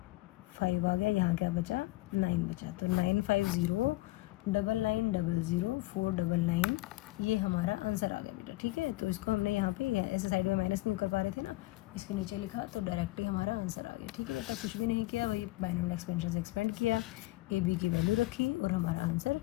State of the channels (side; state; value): right; quieter; 19.6 dB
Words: 5 आ गया, यहाँ क्या बचा 9 बचा, तो 95099900 ये हमारा आंसर आ गया बेटा। ठीक है, तो इसको हमने यहाँ पे ऐसे साइड में माइनस नहीं कर पा रहे थे ना, इसके नीचे लिखा तो डायरेक्टली हमारा आंसर आ गया। ठीक है बेटा, कुछ भी नहीं किया, वही बाइनोमियल एक्सपेंशन से एक्सपेंड किया, ए बी की वैल्यू रखी और हमारा आंसर